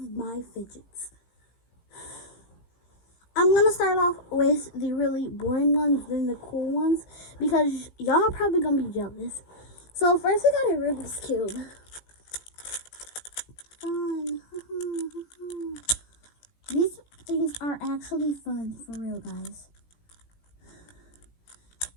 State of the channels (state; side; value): late; right; 17 ms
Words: my fidgets. I'm going to start off with the really boring ones, then the cool ones, because y'all are probably going to be jealous. So first we got a Rubik's Cube. Fun. These things are actually fun, for real, guys.